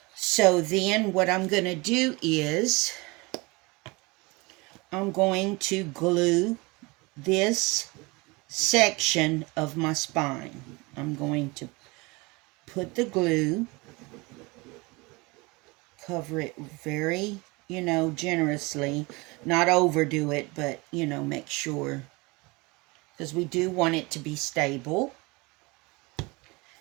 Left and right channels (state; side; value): quieter; left; 25.3 dB